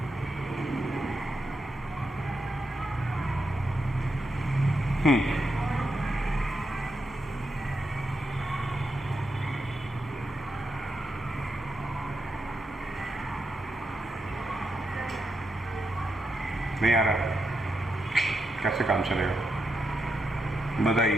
नहीं आ रहा? कैसे काम चलेगा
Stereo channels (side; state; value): both; normal; correlation 0.84